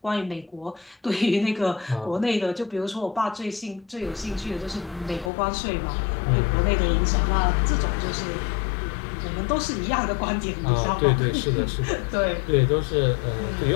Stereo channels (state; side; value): drops out; right; at 5.3 s